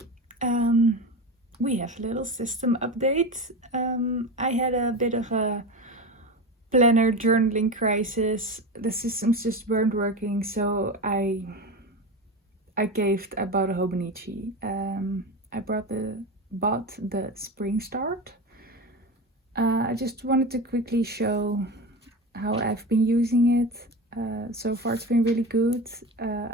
We have a little system update. I had a bit of a planner journaling crisis. The systems just weren't working, so I caved. I bought a Hobonichi. I bought the Spring Start. I just wanted to quickly show how I've been using it. So far, it's been really good.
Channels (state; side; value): normal; both; correlation 0.24